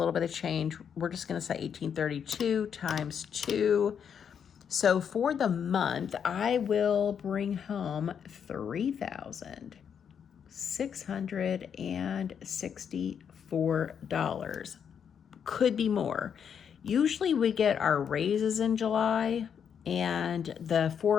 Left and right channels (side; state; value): right; quieter; 7.7 dB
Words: bit of change. We're just going to say 1832 times 2. So for the month, I will bring home $3,664. Could be more. Usually we get our raises in July, and the